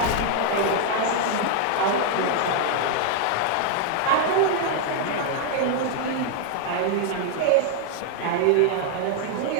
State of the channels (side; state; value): both; different; correlation 0.00